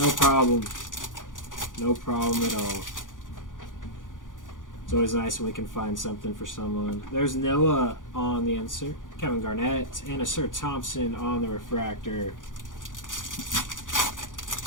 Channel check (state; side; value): late; right; 0.88 ms